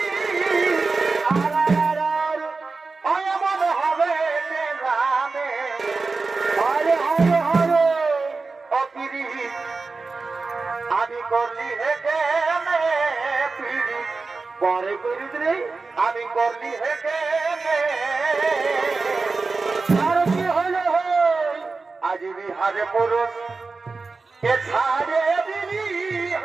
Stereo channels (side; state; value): left; quieter; 4.0 dB